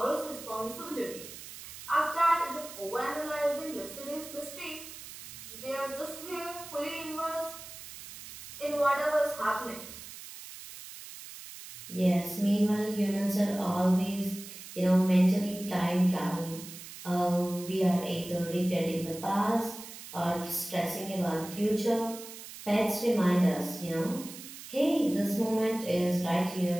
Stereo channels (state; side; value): noise; right; hiss, 13 dB below the sound